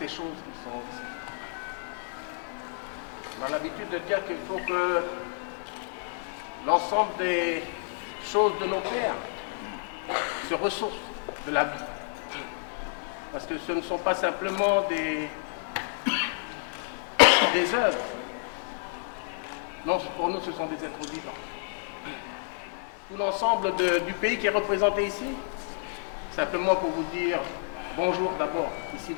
choses qui sont... On a l'habitude de dire qu'il faut que l'ensemble des choses de nos pères se ressourcent de la vie. Parce que ce ne sont pas simplement des œuvres. Non, pour nous, ce sont des êtres vivants. Tout l'ensemble du pays qui est représenté ici, simplement pour vous dire bonjour d'abord, ici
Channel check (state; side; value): silent; right; 58 dB below the other